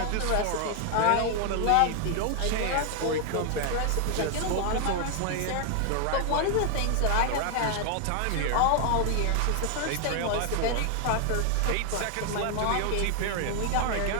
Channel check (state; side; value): different; both; correlation 0.00